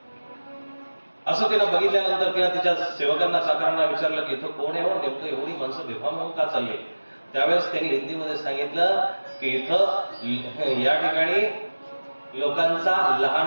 असं तिनं बघितल्यानंतर तिला तिच्या सेवकांना चाकरांना विचारलं की इथं कोण आहे हो, नेमकं एवढी माणसं बेभान होऊन का चालली. त्यावेळेस त्यांनी हिंदीमध्ये सांगितलं की इथं या ठिकाणी लोकांचा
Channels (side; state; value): both; inverted; correlation -1.00